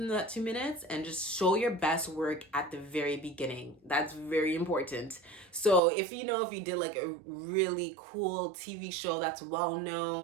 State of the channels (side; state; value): left; drops out; at 5.8 s